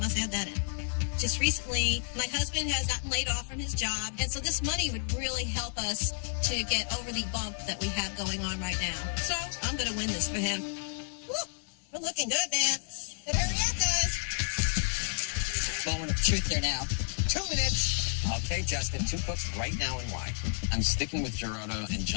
must add that in. Just recently, my husband has gotten laid off from his job, and so this money would really help us to get over the bump that we have going on right now. So I'm going to win this for him. Woo, we're looking good, man. But hurry up, guys. Moment of truth here now. 2 minutes. Okay, Justin, 2 cooks right now and why? I'm sticking with Gerardo and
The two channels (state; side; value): silent; right; digital silence